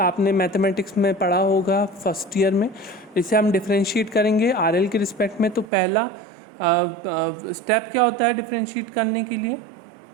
मैथमेटिक्स में पढ़ा होगा फर्स्ट ईयर में। इसे हम डिफरेंशिएट करेंगे RL के रिस्पेक्ट में। तो पहला स्टेप क्या होता है डिफरेंशिएट करने के लिए?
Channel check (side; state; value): left; drops out; at 5.7 s